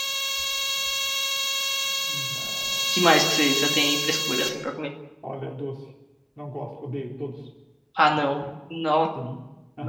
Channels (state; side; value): identical; both; correlation 1.00